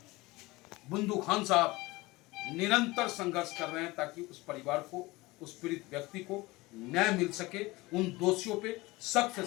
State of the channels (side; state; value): right; quieter; 21.4 dB